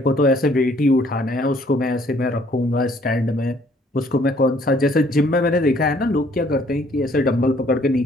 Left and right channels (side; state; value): both; normal; correlation 0.62